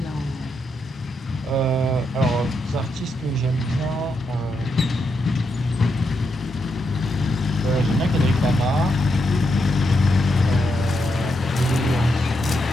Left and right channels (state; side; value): normal; both; correlation 0.82